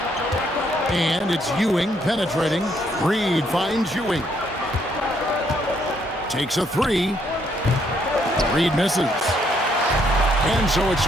And it's Ewing penetrating. Reed finds Ewing. Takes a 3. Reed misses. And so it's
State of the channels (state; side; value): normal; both; correlation 0.71